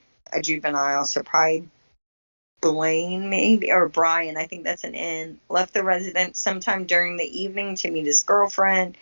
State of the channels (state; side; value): inverted; both; correlation -1.00